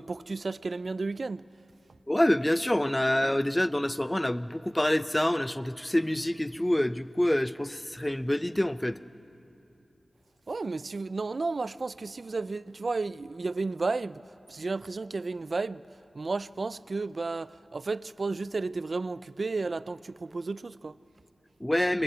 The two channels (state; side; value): normal; both; correlation 0.98